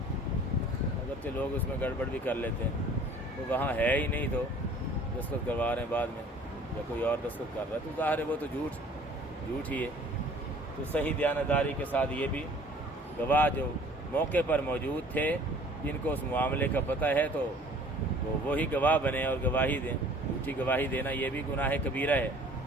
اگرچہ لوگ اس میں گڑبڑ بھی کر لیتے ہیں، تو وہاں ہے ہی نہیں تو دستخط کروا رہے ہیں بعد میں، یا کوئی اور دستخط کر رہا ہے، تو ظاہر ہے وہ تو جھوٹ ہی ہے۔ تو صحیح دیانتداری کے ساتھ یہ بھی گواہ جو موقع پر موجود تھے، جن کو اس معاملے کا پتہ ہے، تو وہی گواہ بنے اور گواہی دیں۔ جھوٹی گواہی دینا یہ بھی گناہ کبیرہ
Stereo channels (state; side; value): normal; both; correlation 0.52